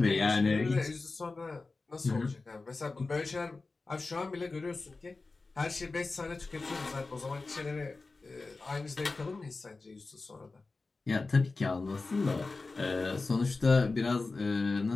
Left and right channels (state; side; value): quieter; right; 3.7 dB